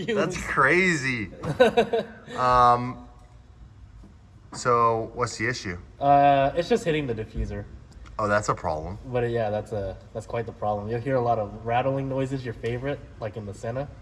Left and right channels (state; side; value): identical; both; correlation 1.00